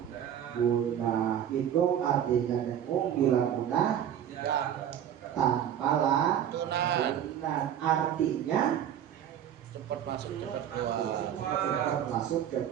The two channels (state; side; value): quieter; left; 10.0 dB